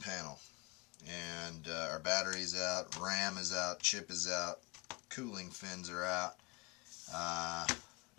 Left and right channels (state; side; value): quieter; right; 26.5 dB